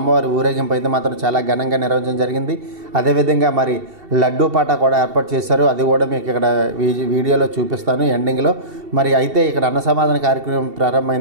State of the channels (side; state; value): left; late; 2.7 ms